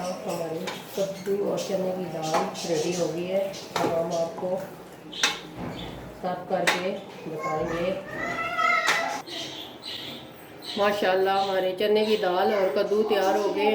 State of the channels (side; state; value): both; identical; correlation 1.00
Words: हमारी कद्दू और चने की दाल रेडी हो गई है। अब हम आपको सर्व करके बताएंगे। माशाल्लाह हमारे चने की दाल और कद्दू तैयार हो गए